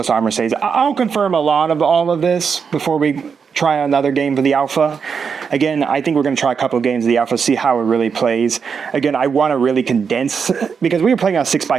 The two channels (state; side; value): quieter; left; 6.2 dB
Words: armor saves. I'll confirm a lot of all of this before we try another game for the alpha. Again, I think we're going to try a couple of games of the alpha, see how it really plays. Again, I want to really condense, because we were playing on